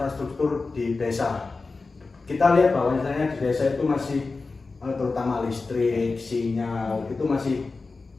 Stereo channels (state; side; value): quieter; right; 3.9 dB